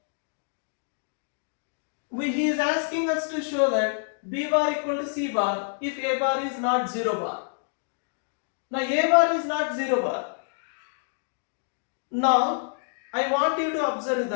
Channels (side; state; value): right; silent; digital silence